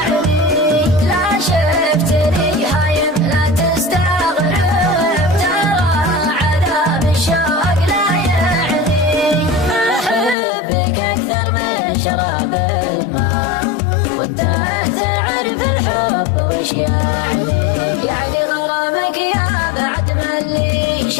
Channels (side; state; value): right; drops out; at 10.4 s